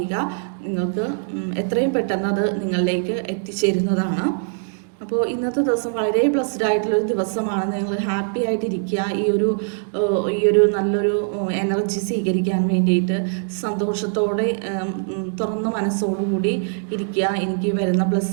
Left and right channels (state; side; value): silent; left; digital silence